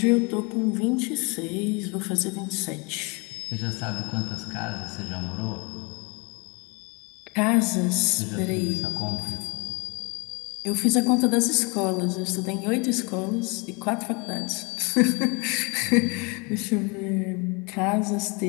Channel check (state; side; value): quieter; right; 30.2 dB